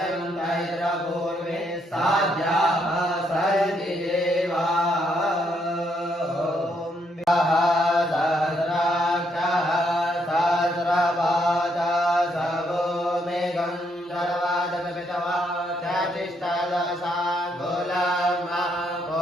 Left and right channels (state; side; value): normal; both; correlation 0.74